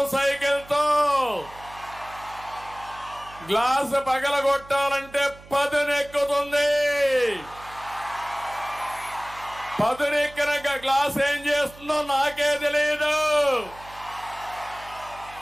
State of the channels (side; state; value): right; noise; hum, 21 dB below the sound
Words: సైకిల్తో. గ్లాసు పగలగొట్టాలంటే పదునెక్కుతుంది. పదునెక్కిన గ్లాస్ ఏం చేస్తుందో నాకే తెలియదు.